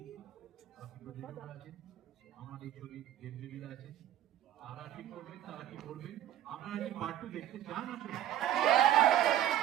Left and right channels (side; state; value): left; quieter; 12.1 dB